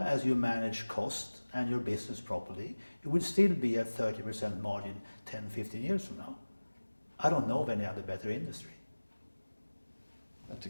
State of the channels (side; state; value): both; inverted; correlation -1.00